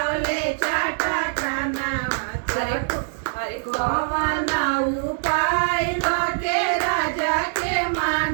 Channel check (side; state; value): left; silent; digital silence